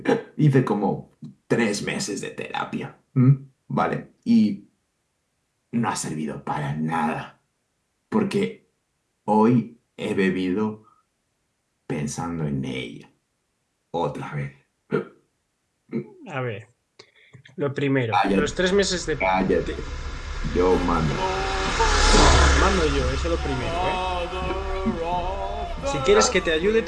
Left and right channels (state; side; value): identical; both; correlation 1.00